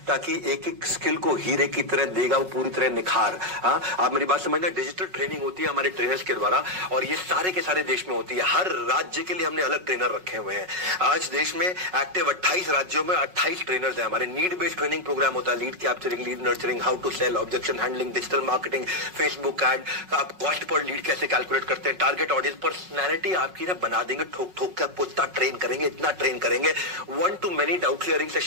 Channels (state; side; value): late; left; 5.4 ms